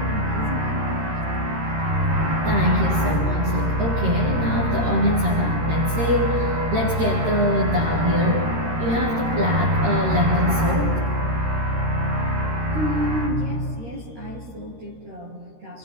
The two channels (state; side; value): late; left; 13 ms